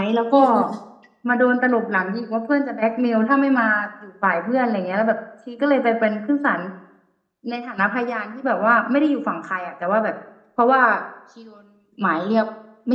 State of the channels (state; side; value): identical; both; correlation 1.00